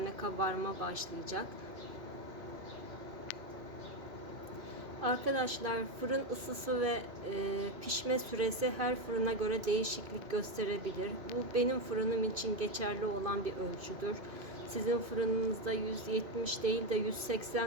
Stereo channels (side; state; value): left; late; 2.5 ms